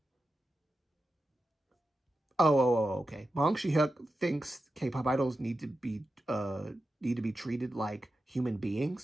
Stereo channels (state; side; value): normal; both; correlation 0.91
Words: Okay. Bong Shi-hyuk thinks K-pop idols need to be treated like human